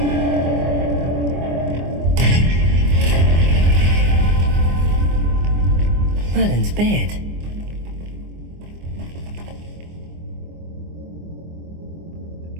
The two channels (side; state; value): left; late; 24 ms